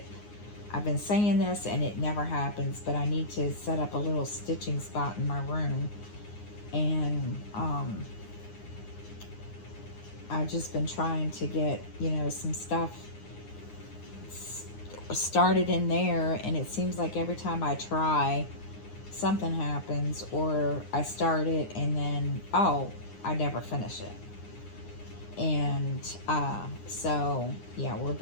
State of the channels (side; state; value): right; late; 9.7 ms